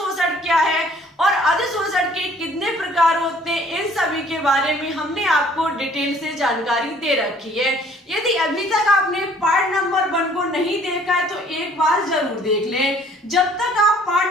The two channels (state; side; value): normal; both; correlation 0.56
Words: क्या है और अधिशोषण के कितने प्रकार होते हैं, इन सभी के बारे में हमने आपको डिटेल से जानकारी दे रखी है। यदि अभी तक आपने पार्ट नंबर 1 को नहीं देखा है तो एक बार जरूर देख लें। जब तक आप